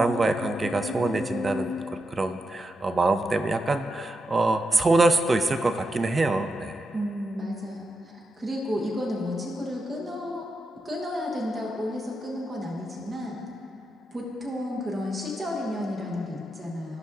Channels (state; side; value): normal; both; correlation 0.86